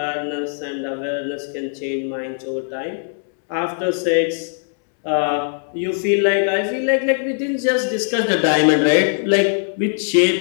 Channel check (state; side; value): silent; right; digital silence